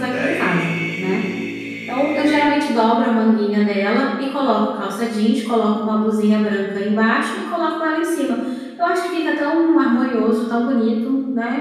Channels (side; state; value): both; identical; correlation 1.00